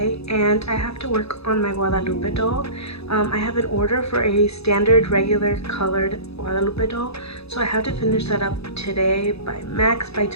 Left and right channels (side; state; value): right; late; 0.79 ms